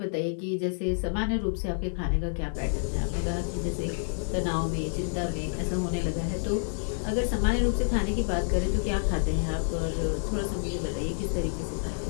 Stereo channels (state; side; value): silent; right; digital silence